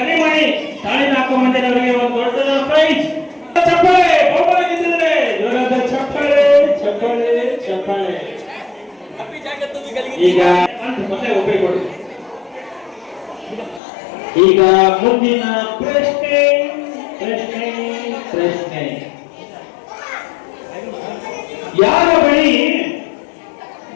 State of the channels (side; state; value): right; drops out; at 13.8 s